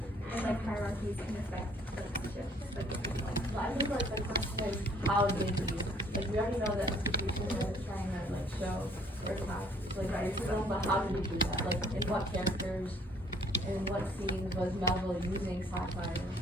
and like hierarchies can affect relationships, like with people? Well, I think like the question is, how did you, like we already know that institution is trying to like show or attack like racism, but how did you do that? Like in what characters, in what scenes was Melville using satire?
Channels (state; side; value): normal; both; correlation 0.61